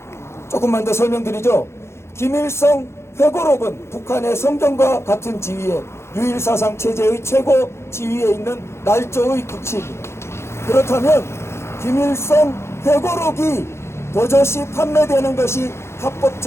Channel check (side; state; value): right; late; 0.13 ms